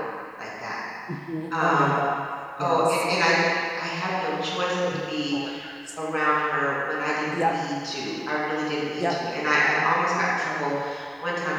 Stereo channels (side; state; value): both; identical; correlation 1.00